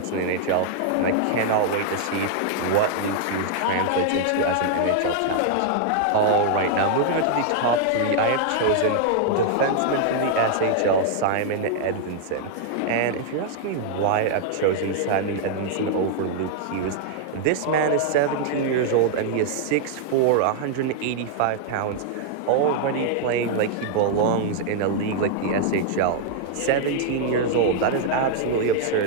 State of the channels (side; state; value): both; different; correlation -0.01